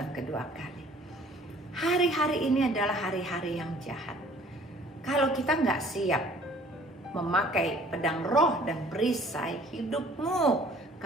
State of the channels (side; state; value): both; normal; correlation 0.54